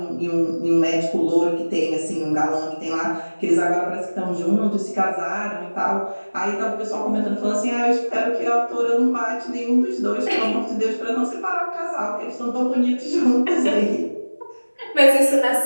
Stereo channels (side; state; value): both; inverted; correlation -1.00